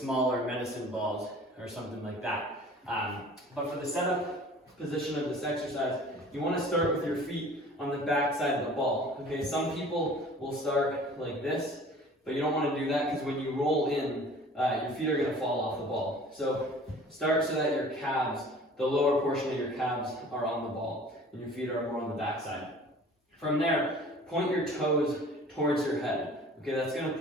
medicine balls or something like that. But for the setup position of this exercise, you want to start with your feet on the back side of the ball. Okay, some people will start like this, but you don't want to do that because when you roll in, your feet are going to fall off the ball. So start so that your calves, the lower portion of your calves, are on the ball and your feet are more on the back side. From there, point your toes towards your head. Okay, that's going to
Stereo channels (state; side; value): normal; both; correlation 0.47